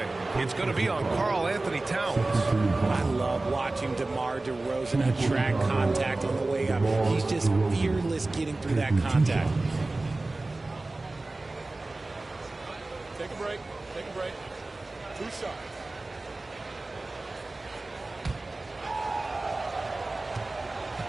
It's going to be on Karl Anthony Towns. I love watching DeMar DeRozan attract contact on the way up. He's just fearless getting through that contact. Take a break. Take a break. 2 shots.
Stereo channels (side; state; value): left; quieter; 3.1 dB